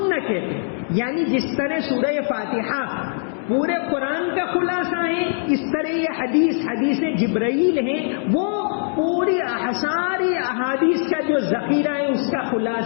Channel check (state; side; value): silent; right; 64 dB below the other